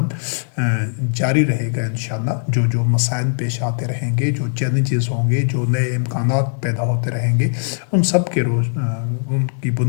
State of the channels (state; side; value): silent; right; digital silence